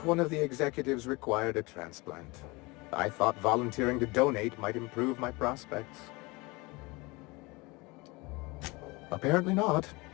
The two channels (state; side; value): quieter; right; 24.9 dB